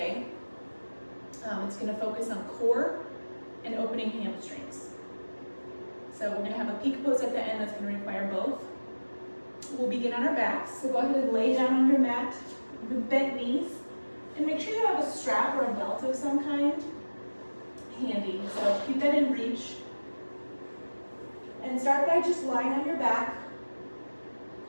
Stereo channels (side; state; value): both; inverted; correlation -1.00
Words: It's going to focus on core and opening hamstrings. So we're going to have a peak pose at the end that's going to require both. We'll begin on our backs, so go ahead and lay down on your mat with bent knees and make sure you have a strap or a belt of some kind handy. So keep that in reach and start by just lying on your back.